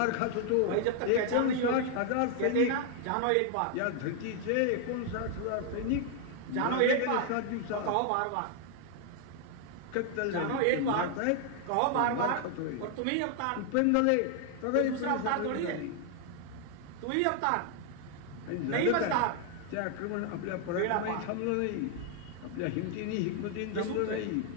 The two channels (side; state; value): both; different; correlation 0.00